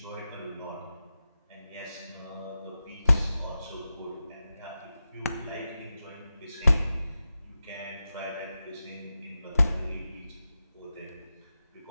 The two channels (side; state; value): both; inverted; correlation -0.92